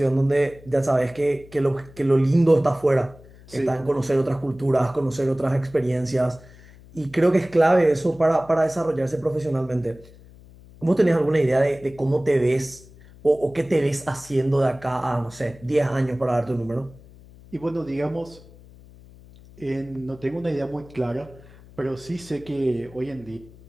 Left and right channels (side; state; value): left; noise; hum, 22 dB below the sound